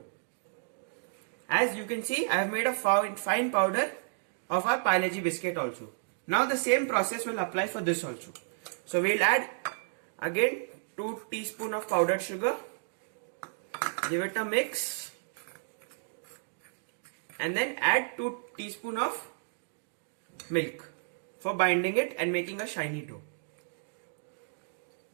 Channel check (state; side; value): silent; left; digital silence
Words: As you can see, I have made a fine powder of our Parle-G biscuit also. Now the same process will apply for this also. So we'll add again 2 teaspoons of powdered sugar. Give it a mix. And then add 2 teaspoons of milk for binding it and making a shiny dough.